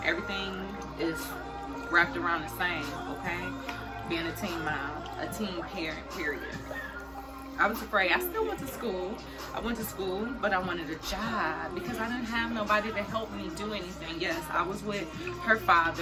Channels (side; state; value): both; identical; correlation 1.00